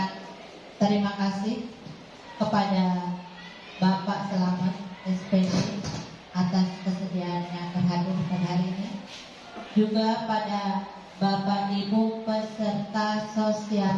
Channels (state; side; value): identical; both; correlation 1.00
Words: terima kasih kepada Bapak Selamat SPD atas kesediaannya berhadir pada hari ini, juga pada Bapak Ibu peserta